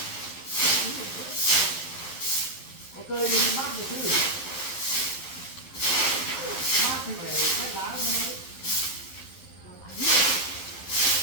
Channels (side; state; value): right; late; 11 ms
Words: Có cây thì mát được chứ. Mát thì phải hết lá thôi.